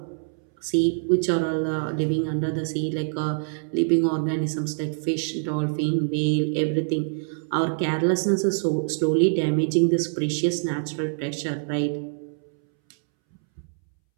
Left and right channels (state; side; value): silent; left; 62 dB below the other